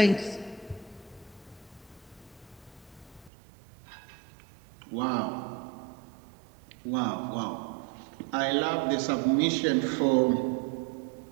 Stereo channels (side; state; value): left; drops out; at 3.3 s